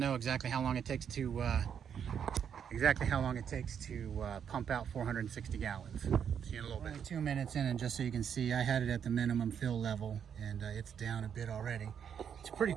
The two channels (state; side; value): quieter; left; 8.0 dB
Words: exactly how long it takes to pump out 460 gallons. See you in a little bit. Only 2 minutes in, and just so you can see, I had it at the minimum fill level, and it's down a bit already. It's pretty